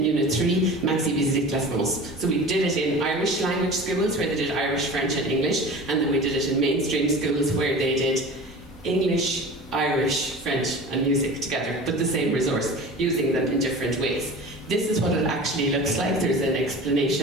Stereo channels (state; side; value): normal; both; correlation 0.37